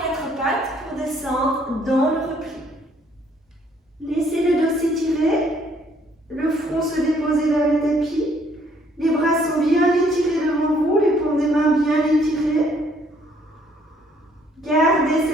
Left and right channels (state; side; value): normal; both; correlation 0.65